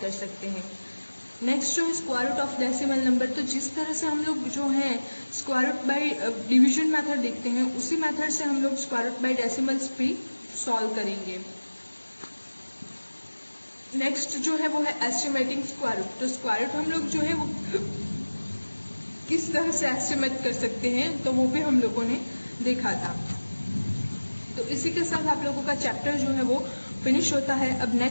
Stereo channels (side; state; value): both; inverted; correlation -1.00